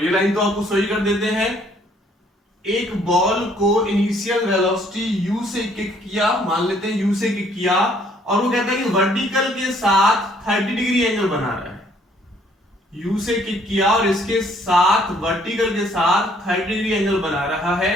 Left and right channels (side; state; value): both; normal; correlation 0.63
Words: लाइन तो आपको सही कर देते हैं। एक बॉल को इनिशियल वेलोसिटी u से किक किया, मान लेते हैं u से किक किया, और वो कहता है कि वर्टिकल के साथ 30 डिग्री एंगल बना रहा है। u से किक किया और इसके साथ वर्टिकल के साथ 30 डिग्री एंगल बना रहा है,